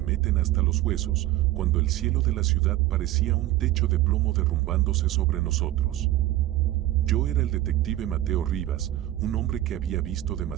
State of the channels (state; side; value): quieter; left; 15.0 dB